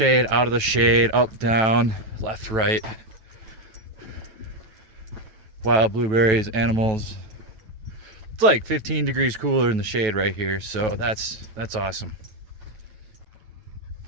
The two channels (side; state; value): left; late; 9.2 ms